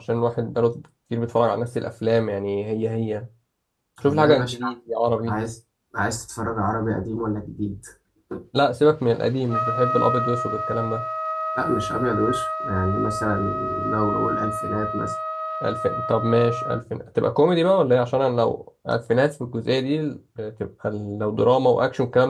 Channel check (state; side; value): identical; both; correlation 1.00